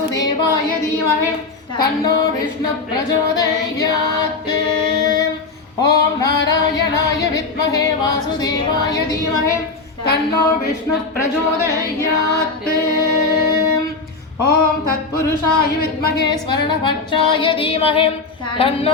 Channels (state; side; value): quieter; right; 4.0 dB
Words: தீமஹி தன்னோ விஷ்ணு பிரச்சோதயாத். ஓம் நாராயணாய வித்மஹே வாசுதேவாய தீமஹி தன்னோ விஷ்ணு பிரச்சோதயாத். ஓம் தத்புருஷாய வித்மஹே ஸ்வரணபட்சாய தீமஹி